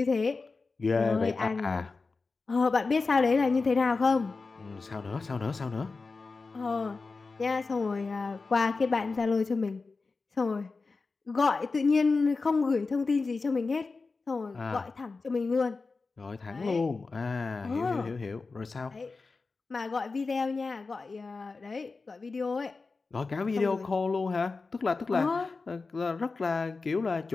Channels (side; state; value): right; quieter; 4.1 dB